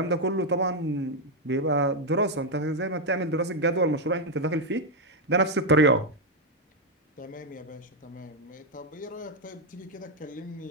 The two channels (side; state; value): both; normal; correlation 0.02